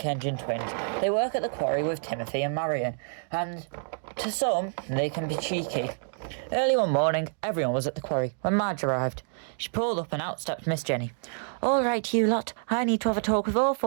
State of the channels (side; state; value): left; silent; digital silence